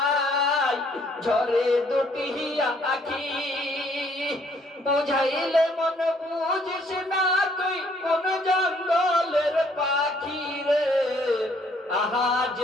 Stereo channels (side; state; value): both; normal; correlation 0.64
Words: ঝরে দুটি আখি, বুঝাইলে মন বুঝিস না তুই কোন জঙ্গলের পাখি রে। আহাজ